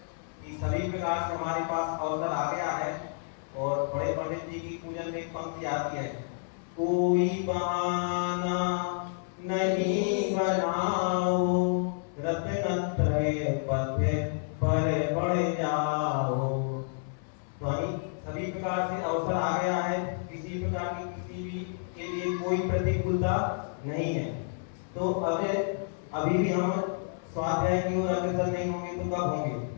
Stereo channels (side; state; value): right; silent; 58 dB below the other